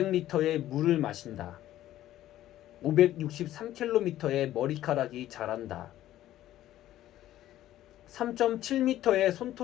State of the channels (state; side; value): quieter; right; 13.5 dB